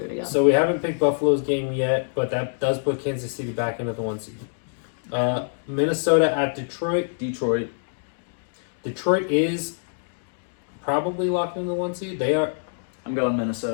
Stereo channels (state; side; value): silent; right; digital silence